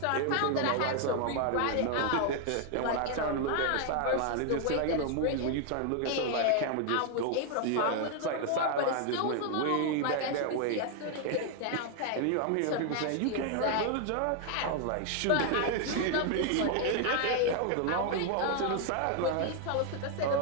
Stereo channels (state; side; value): different; both; correlation 0.00